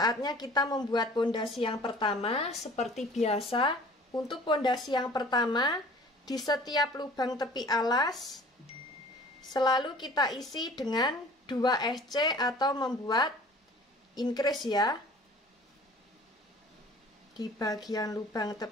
kita membuat pondasi yang pertama. Seperti biasa, untuk pondasi yang pertama, di setiap lubang tepi alas selalu kita isi dengan 2 SC atau membuat increase ya. Di bagian lubang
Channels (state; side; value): normal; both; correlation 0.48